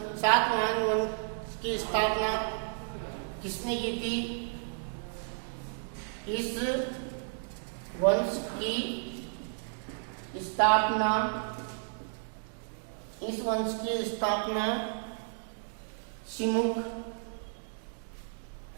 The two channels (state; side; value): silent; left; digital silence